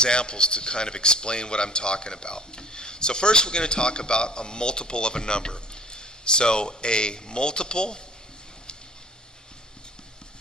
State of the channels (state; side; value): normal; both; correlation 0.50